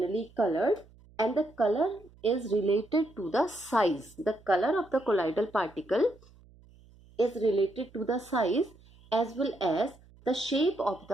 colored, and the color is related to the size. The color of the colloidal particle is related to the size as well as the shape of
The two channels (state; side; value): noise; right; hum, 26 dB below the sound